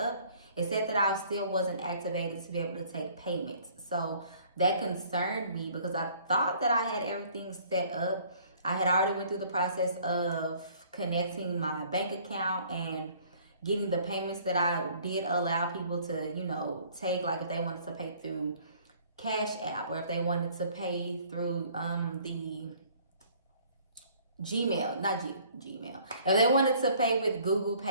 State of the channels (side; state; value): both; inverted; correlation -0.56